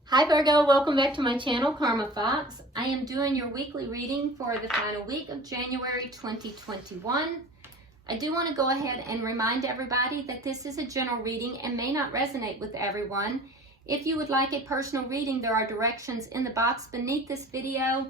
Hi Virgo, welcome back to my channel, Karma Fox. I am doing your weekly reading for the final week of January 2021. I do want to go ahead and remind everybody that this is a general reading and may not resonate with everyone. If you would like a personal reading, there are directions in the box beneath this video.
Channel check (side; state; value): both; normal; correlation 0.43